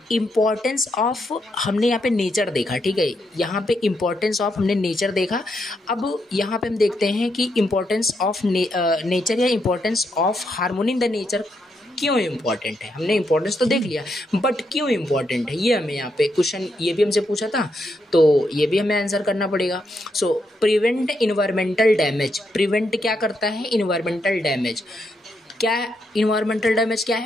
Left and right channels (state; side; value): normal; both; correlation 0.80